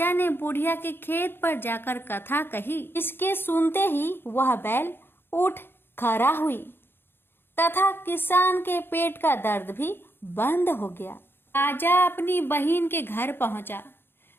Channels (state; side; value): late; right; 0.10 ms